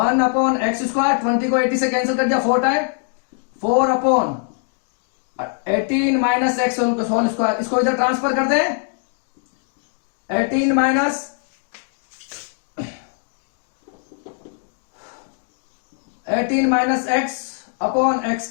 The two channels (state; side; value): silent; right; 56 dB below the other